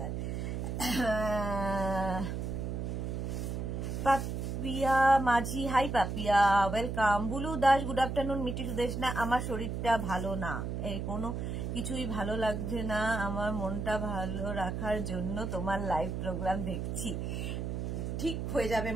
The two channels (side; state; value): right; noise; hum, 3 dB below the sound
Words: Papiya Majhi, hi Papiya, welcome. Bulu Das, good afternoon. মিটি সুদেশ না, আমার শরীরটা ভালো না, এই কোনো কিছুই ভালো লাগছে না, আমার মনটা ভালো রাখার জন্য তোমার লাইভ প্রোগ্রাম দেখছি। ঠিক হয়ে যাবে,